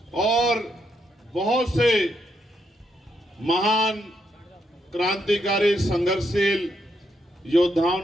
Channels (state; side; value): normal; both; correlation 0.78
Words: और बहुत से महान क्रांतिकारी, संघर्षशील योद्धाओं